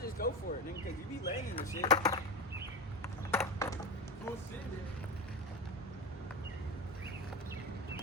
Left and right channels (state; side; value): normal; both; correlation 0.21